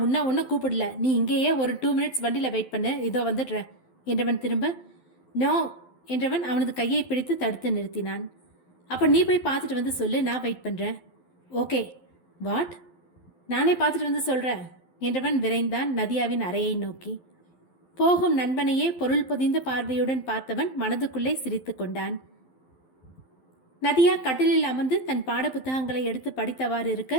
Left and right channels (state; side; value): late; right; 12 ms